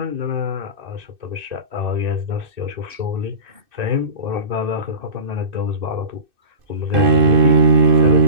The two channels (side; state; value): left; late; 2.6 ms